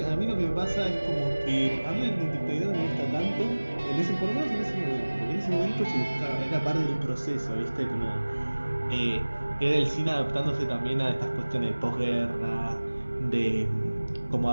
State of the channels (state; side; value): inverted; both; correlation -1.00